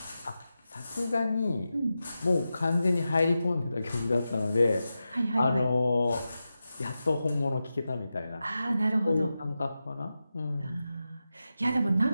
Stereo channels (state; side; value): inverted; both; correlation -0.92